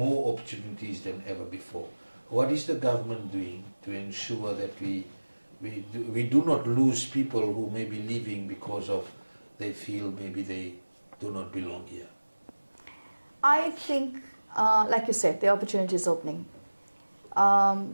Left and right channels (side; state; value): both; inverted; correlation -1.00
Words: opportunities than ever before. What is the government doing to ensure that we do not lose people who may be leaving because of they feel maybe they do not belong here? I think, like you said, the opportunity is opening.